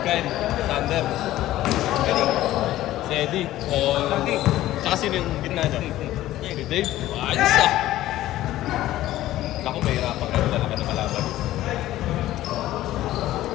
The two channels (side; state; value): right; quieter; 14.8 dB